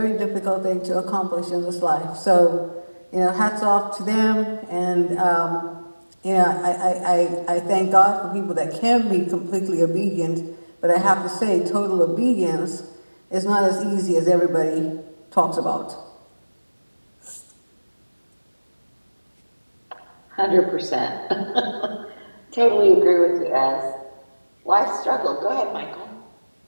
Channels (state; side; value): inverted; both; correlation -1.00